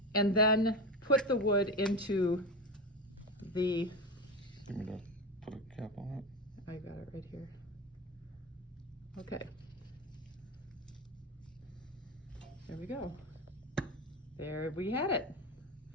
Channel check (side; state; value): both; normal; correlation 0.20